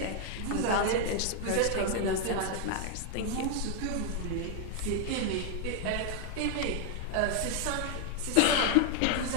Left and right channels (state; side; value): different; both; correlation 0.00